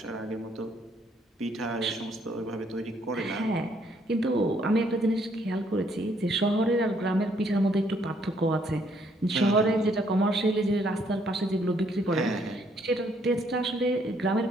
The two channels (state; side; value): normal; both; correlation 0.68